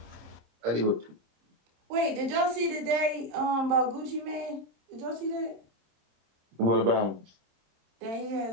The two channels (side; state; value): left; late; 27 ms